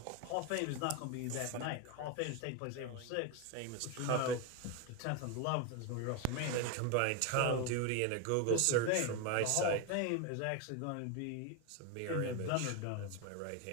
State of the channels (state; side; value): different; both; correlation 0.02